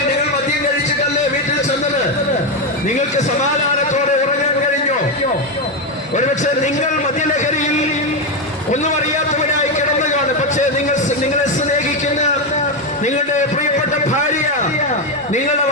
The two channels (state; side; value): normal; both; correlation 0.09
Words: നിങ്ങൾ മദ്യം കഴിച്ചിട്ടല്ലേ വീട്ടിൽ ചെന്നത്? നിങ്ങൾക്ക് സമാധാനത്തോടെ ഉറങ്ങാൻ കഴിഞ്ഞോ? ഒരുപക്ഷെ നിങ്ങൾ മദ്യലഹരിയിൽ ഒന്നും അറിയാത്തവരായി കിടന്നു കാണും. പക്ഷേ നിങ്ങളെ സ്നേഹിക്കുന്ന നിങ്ങളുടെ പ്രിയപ്പെട്ട ഭാര്യ നിങ്ങളുടെ